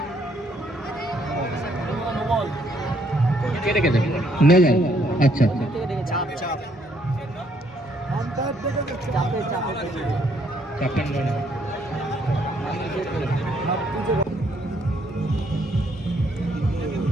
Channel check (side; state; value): both; normal; correlation 0.69